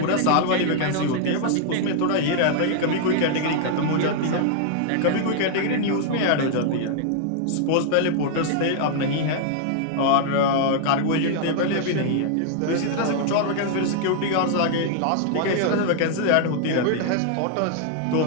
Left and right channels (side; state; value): both; different; correlation -0.01